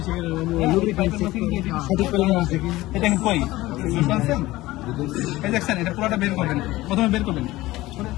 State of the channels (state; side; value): quieter; right; 18.0 dB